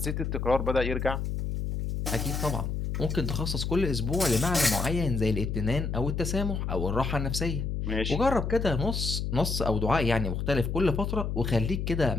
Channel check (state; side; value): noise; left; hum, 2 dB below the sound